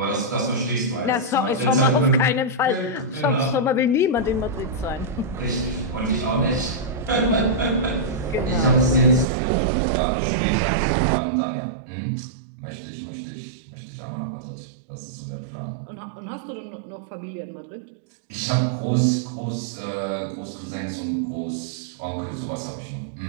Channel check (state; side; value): drops out; left; at 9.2 s